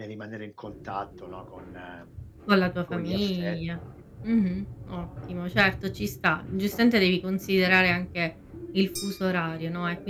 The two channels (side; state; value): both; identical; correlation 1.00